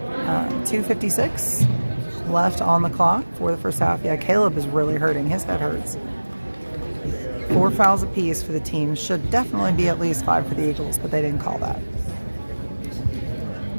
2:56 left on the clock for the first half. Yeah, Caleb is really hurting. His head hurts. 4 fouls apiece for the team. Should definitely be at least 5 for the Eagles, but they didn't call that.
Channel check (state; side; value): inverted; both; correlation -1.00